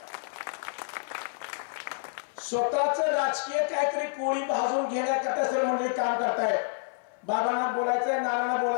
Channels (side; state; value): right; silent; 59 dB below the other